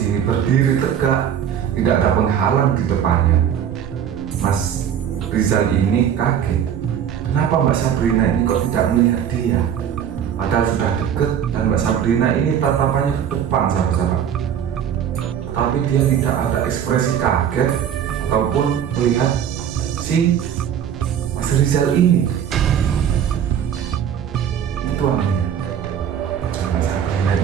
berdiri tegak, tidak ada penghalang di depannya. Mas Rizal ini kaget, kenapa Mbak Sabrina ini kok tidak melihat dia? Padahal sudah deket dan Mbak Sabrina ini tatapannya ke depan, sahabat-sahabat. Tapi dia tidak ada ekspresi kaget ataupun melihat si Mas Rizal ini. Itu anehnya. Mbak Sabrina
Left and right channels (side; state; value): left; quieter; 9.0 dB